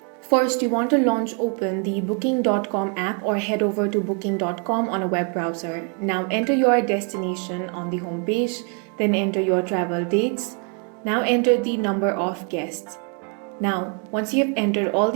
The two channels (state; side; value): quieter; left; 36.9 dB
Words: First, you want to open the booking.com app or head over to booking.com on a web browser. Now enter your destination on the home page, then enter your travel dates. Now enter the number of guests. Now, once you have entered all